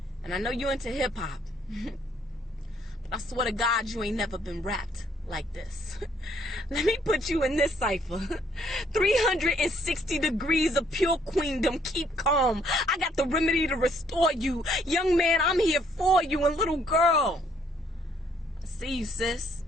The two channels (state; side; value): normal; both; correlation 0.67